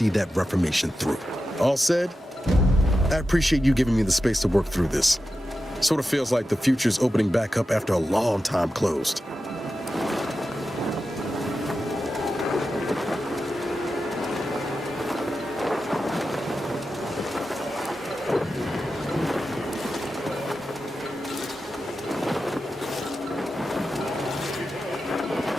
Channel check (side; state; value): both; normal; correlation 0.91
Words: that reformation through. All said, I appreciate you giving me the space to work through this. Sort of feels like the future's opening back up after a long time closed.